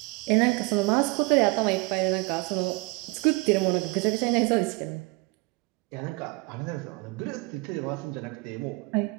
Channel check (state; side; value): quieter; left; 26.5 dB